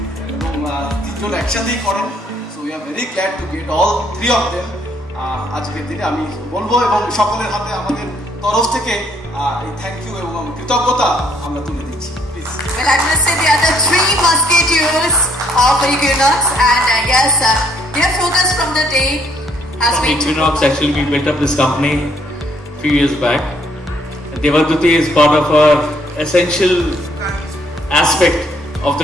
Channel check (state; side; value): normal; both; correlation 0.67